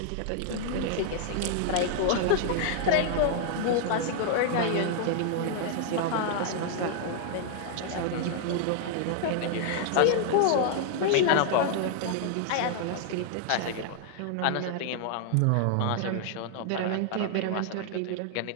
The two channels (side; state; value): both; different; correlation 0.00